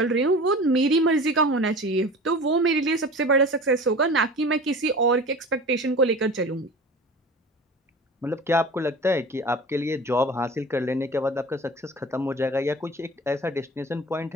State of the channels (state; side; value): normal; both; correlation 0.37